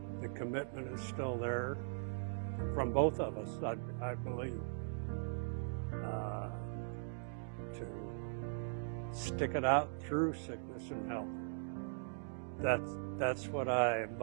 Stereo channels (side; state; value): left; silent; digital silence